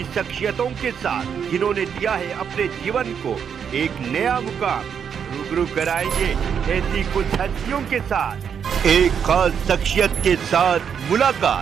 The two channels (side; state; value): left; quieter; 7.5 dB